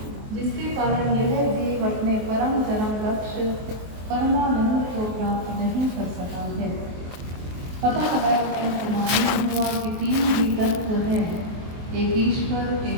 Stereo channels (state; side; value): late; left; 23 ms